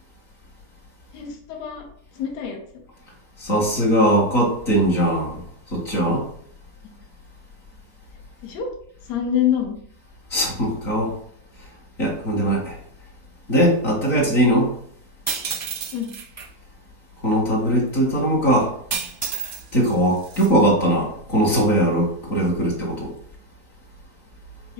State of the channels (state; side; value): late; right; 3.9 ms